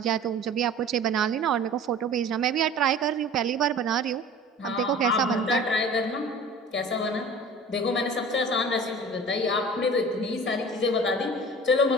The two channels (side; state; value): both; normal; correlation 0.41